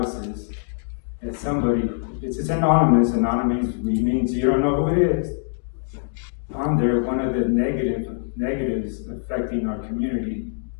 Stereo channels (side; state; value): right; silent; digital silence